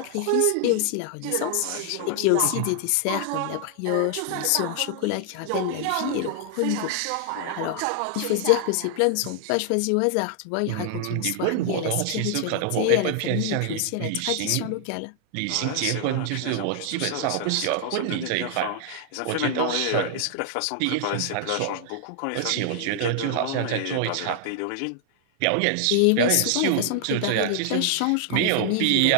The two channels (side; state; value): both; different; correlation 0.00